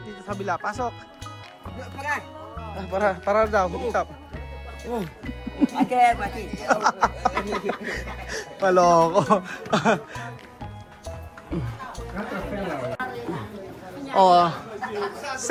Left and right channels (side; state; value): both; identical; correlation 1.00